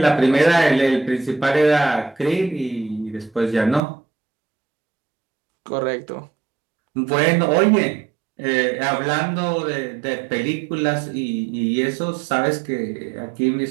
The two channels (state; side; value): drops out; left; at 3.8 s